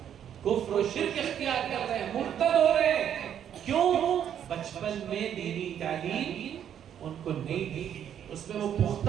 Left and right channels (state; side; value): quieter; left; 9.4 dB